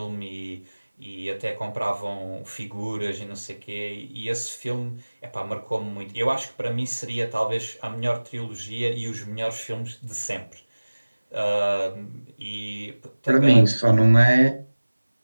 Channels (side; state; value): both; inverted; correlation -1.00